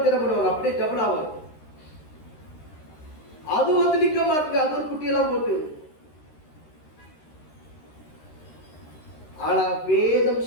என்ன பண்ணுவாங்க? அப்படியே டபுள் ஆகும். அது வந்து நிக்க மாட்டுங்க. அது ஒரு குட்டியெல்லாம் போட்டு. ஆனா வேதம்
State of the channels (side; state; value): right; late; 13 ms